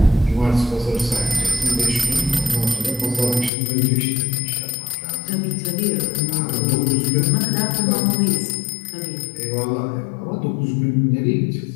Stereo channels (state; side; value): drops out; right; at 3.5 s